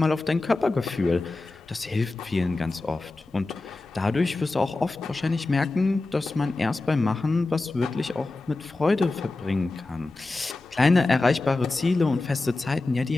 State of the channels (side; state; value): right; quieter; 3.2 dB